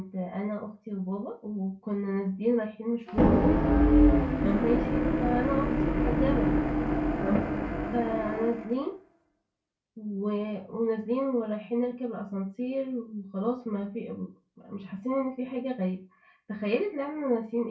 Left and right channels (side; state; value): both; identical; correlation 1.00